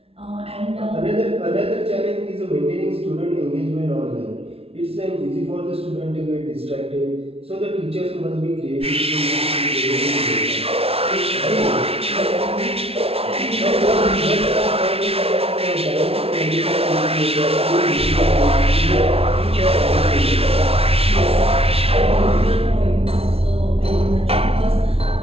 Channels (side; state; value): left; late; 0.29 ms